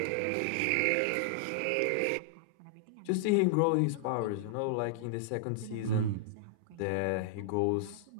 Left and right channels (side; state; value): both; different; correlation -0.01